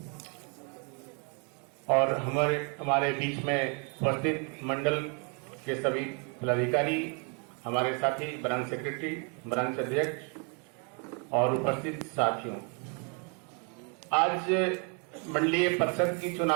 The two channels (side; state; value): left; quieter; 36.2 dB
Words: और हमारे बीच में उपस्थित मंडल के सभी पदाधिकारी, हमारे साथी ब्रांच सेक्रेटरी, ब्रांच अध्यक्ष और उपस्थित साथियों, आज मंडलीय परिषद की